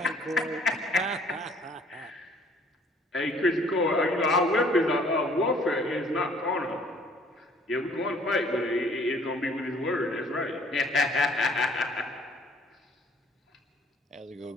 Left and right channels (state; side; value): normal; both; correlation 0.57